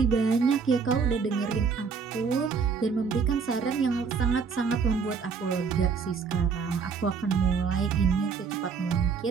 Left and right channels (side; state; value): left; quieter; 5.7 dB